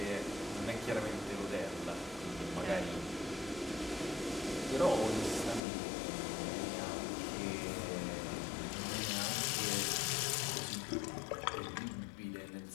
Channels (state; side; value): drops out; right; at 5.6 s